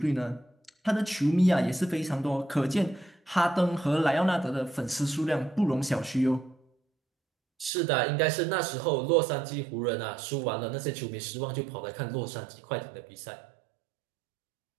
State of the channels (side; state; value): left; drops out; at 7.7 s